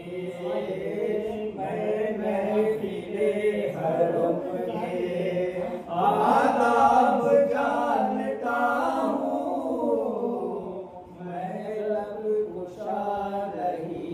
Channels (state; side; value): identical; both; correlation 1.00